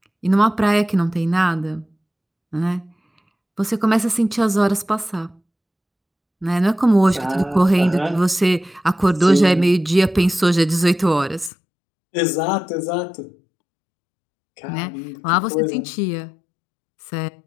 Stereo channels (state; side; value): drops out; right; at 11.5 s